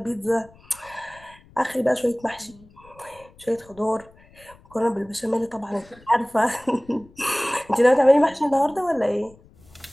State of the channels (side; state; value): left; noise; rumble, 26 dB below the sound